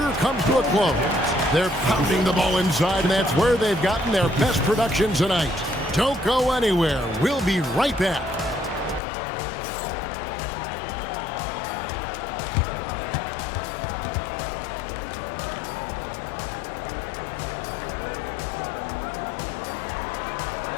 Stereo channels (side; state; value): right; drops out; at 9.0 s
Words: comes to a close. They're pounding the ball inside, and that's where they've gotten their best production tonight. Don't go anywhere. We'll be right back.